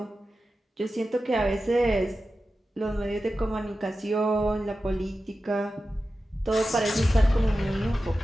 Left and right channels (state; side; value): normal; both; correlation 0.93